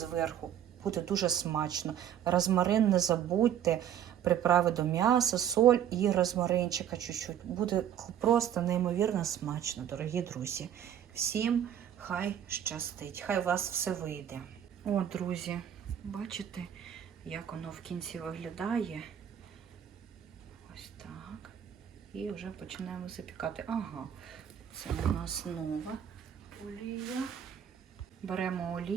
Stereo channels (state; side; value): quieter; left; 9.8 dB